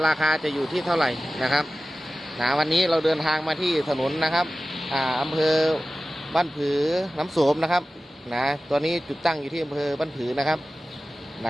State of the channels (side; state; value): both; normal; correlation 0.95